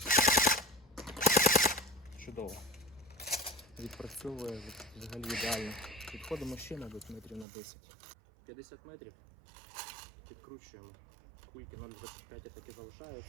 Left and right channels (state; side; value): drops out; left; at 7.5 s